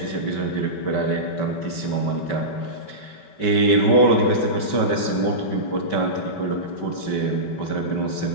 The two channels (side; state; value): right; late; 5.2 ms